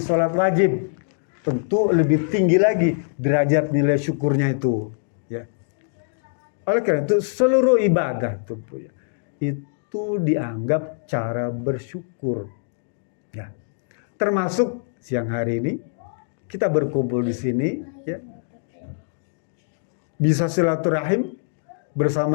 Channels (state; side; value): silent; right; digital silence